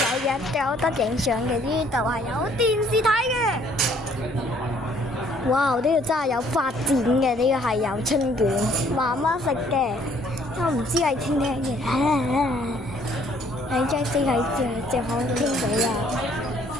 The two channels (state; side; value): normal; both; correlation 0.62